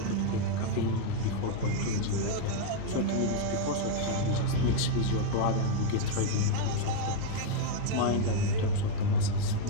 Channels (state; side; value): different; both; correlation 0.00